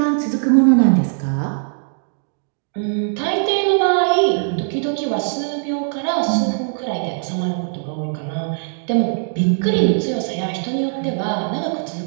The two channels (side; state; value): left; silent; digital silence